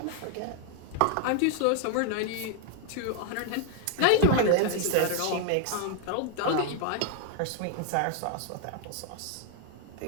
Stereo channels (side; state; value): both; different; correlation 0.00